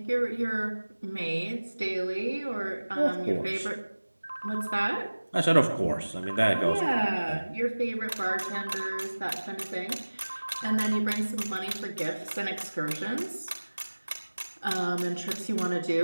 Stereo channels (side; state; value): both; inverted; correlation -1.00